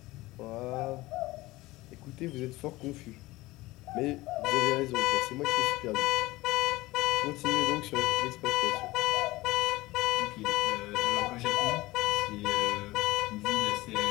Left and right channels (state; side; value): quieter; right; 19.5 dB